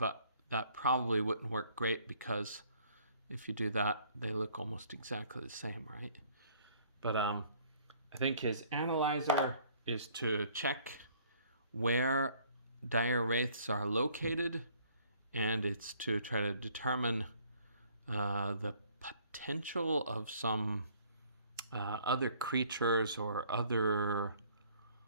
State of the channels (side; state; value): both; inverted; correlation -0.60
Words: that probably wouldn't work great because if you do that, they look almost exactly the same, right? But I think his analyzer is to check where dire wraiths are located, and it's to try to determine the potential of some other creatures or other,